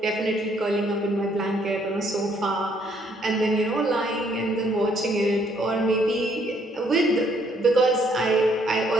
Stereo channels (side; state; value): both; normal; correlation 0.67